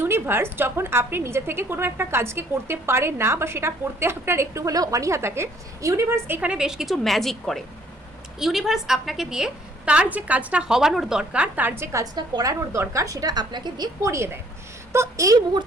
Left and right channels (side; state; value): both; normal; correlation 0.62